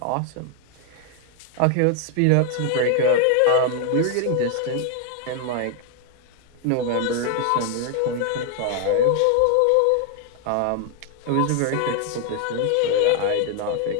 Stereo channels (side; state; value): both; different; correlation 0.00